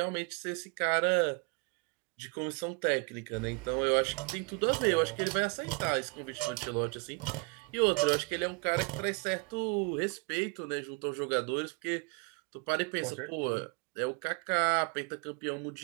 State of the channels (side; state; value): left; quieter; 29.9 dB